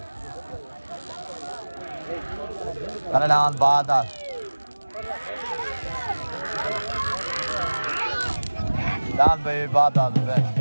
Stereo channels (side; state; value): both; inverted; correlation -1.00